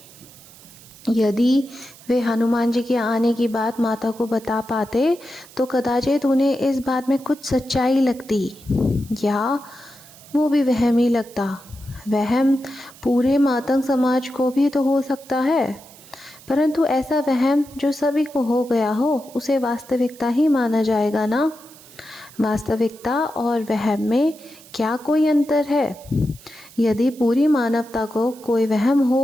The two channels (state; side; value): noise; right; hiss, 22 dB below the sound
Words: यदि वे हनुमान जी के आने की बात माता को बता पाते तो कदाचित उन्हें इस बात में कुछ सच्चाई लगती, या वो भी वहम ही लगता। वहम पूरे मातंग समाज को भी तो हो सकता है, परंतु ऐसा वहम जो सभी को हो गया हो उसे वास्तविकता ही माना जाएगा ना। वास्तविकता और वहम में क्या कोई अंतर है? यदि पूरी मानवता को कोई वहम